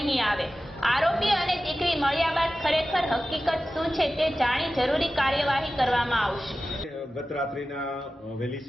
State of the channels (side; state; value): both; normal; correlation 0.95